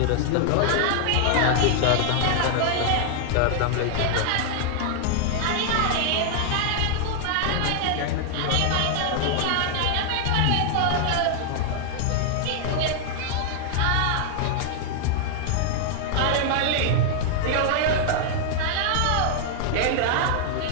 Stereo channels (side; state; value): both; different; correlation -0.01